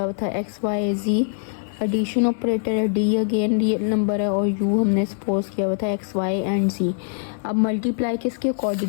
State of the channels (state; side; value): silent; right; digital silence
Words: हुआ था एक्स वाई जी एडिशन ऑपरेटर है, डी अगेन रियल नंबर है और यू हमने सपोज किया हुआ था एक्स वाई एंड सी। अब मल्टीप्लाई किसके